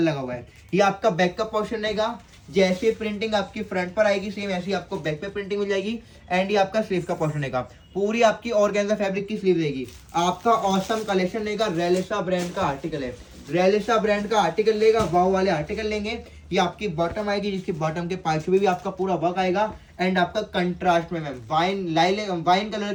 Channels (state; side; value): identical; both; correlation 1.00